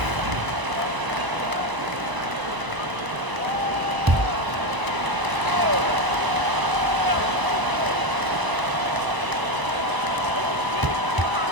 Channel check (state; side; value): late; left; 1.0 ms